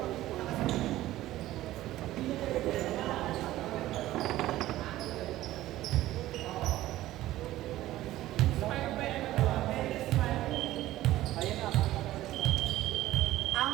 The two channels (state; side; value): quieter; left; 15.3 dB